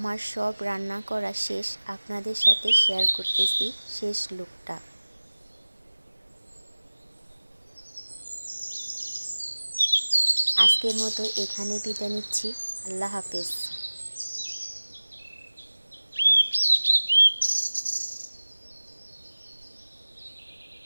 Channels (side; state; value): both; inverted; correlation -1.00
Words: সব রান্না করা শেষ, আপনাদের সাথে শেয়ার করতেছি শেষ লুকটা। আজকের মতো এখানে বিদায় নিচ্ছি। আল্লাহ হাফেজ।